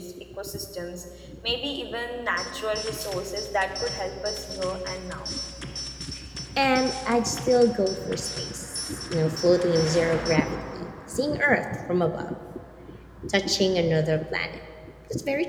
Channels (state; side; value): identical; both; correlation 1.00